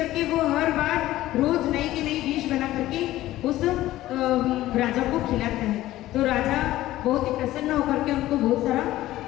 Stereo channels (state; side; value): quieter; right; 15.4 dB